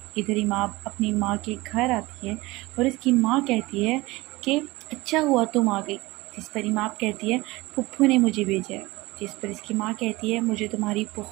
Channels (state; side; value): quieter; left; 20.8 dB